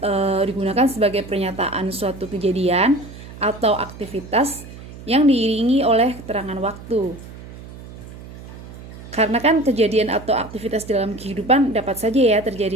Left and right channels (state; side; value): noise; right; hum, 15 dB below the sound